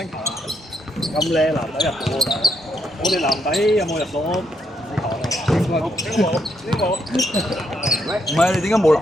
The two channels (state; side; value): normal; both; correlation 0.77